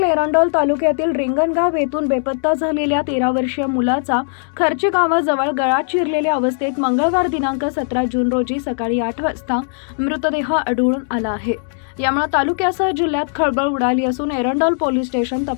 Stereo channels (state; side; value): silent; right; digital silence